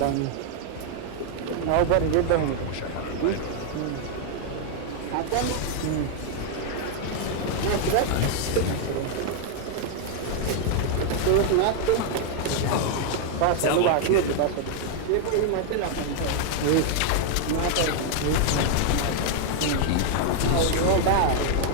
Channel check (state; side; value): different; both; correlation 0.00